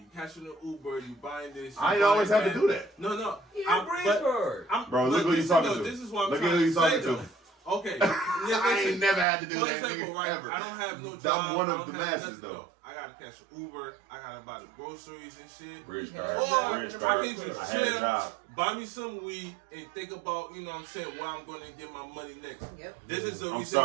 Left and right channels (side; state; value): left; drops out; at 9.2 s